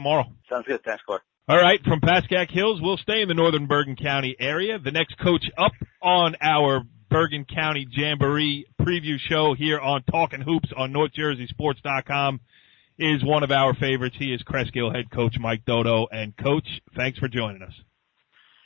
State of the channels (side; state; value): right; quieter; 21.3 dB